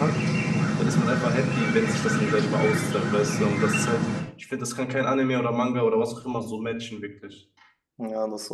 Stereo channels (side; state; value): both; identical; correlation 1.00